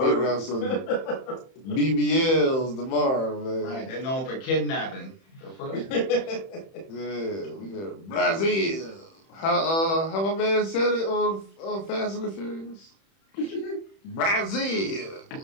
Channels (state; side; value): late; right; 31 ms